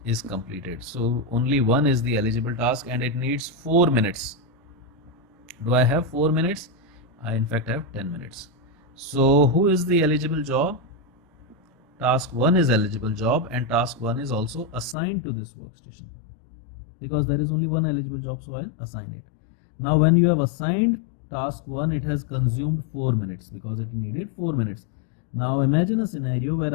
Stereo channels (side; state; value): right; drops out; at 15.0 s